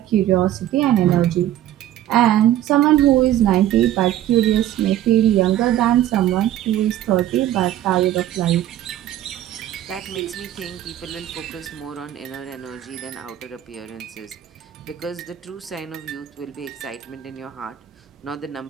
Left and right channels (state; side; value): quieter; left; 12.5 dB